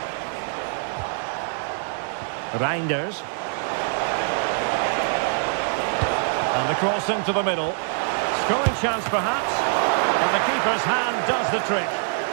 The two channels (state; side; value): silent; left; 62 dB below the other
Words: Reinders. And the cross into the middle. Scoring chance perhaps. And the keeper's hand does the trick.